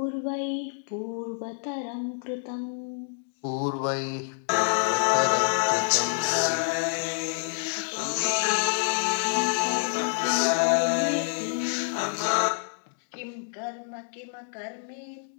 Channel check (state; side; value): silent; right; digital silence